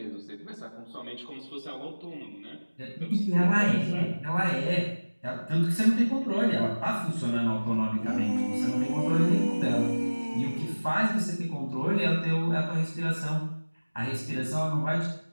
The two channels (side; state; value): both; inverted; correlation -1.00